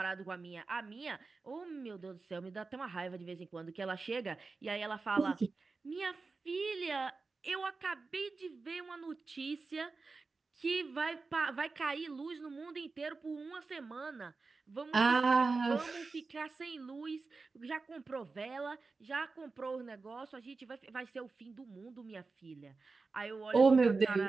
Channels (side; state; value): left; quieter; 4.1 dB